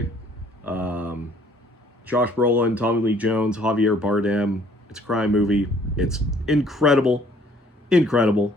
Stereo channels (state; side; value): normal; both; correlation 0.59